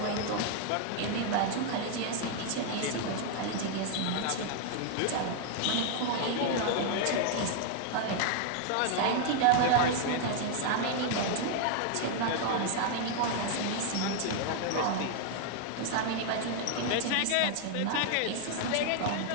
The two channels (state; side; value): different; both; correlation 0.00